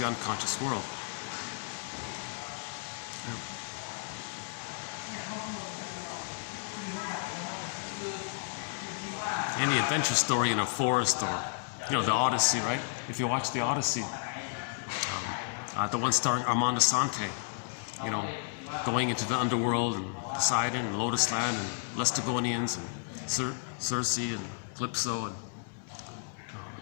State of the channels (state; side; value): silent; right; digital silence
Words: unconscious world. Any adventure story in a forest, or the Odyssey, right? If you watch the Odyssey, the one starring Armand Assante, going into the underworld and Poseidon and Lotus Land and Laestagonians and Circe and Calypso and